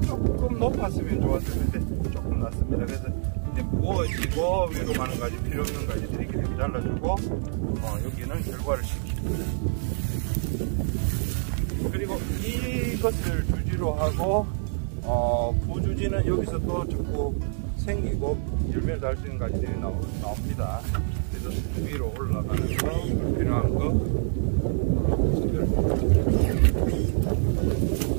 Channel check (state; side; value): silent; left; digital silence